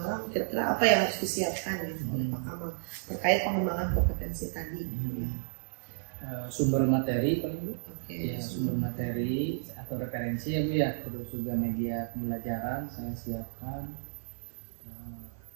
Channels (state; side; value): silent; left; 56 dB below the other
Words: kira-kira apa yang harus disiapkan gitu oleh Pak Kamal terkait pengembangan kompetensi tadi? Sumber materi paling Bu. Ya, sumber materi atau referensi ya Bu ya, terus juga media pembelajaran saya siapkan,